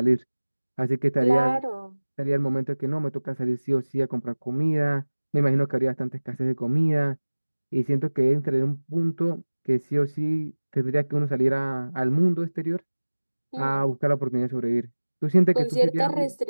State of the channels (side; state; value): both; inverted; correlation -1.00